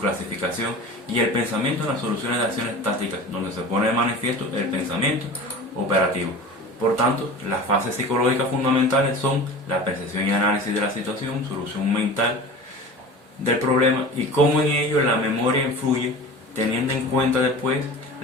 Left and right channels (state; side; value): normal; both; correlation 0.36